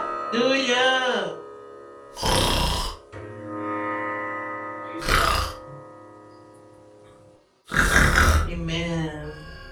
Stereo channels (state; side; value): identical; both; correlation 1.00